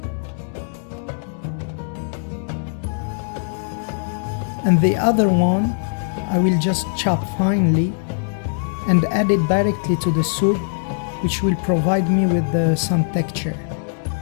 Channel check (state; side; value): silent; right; digital silence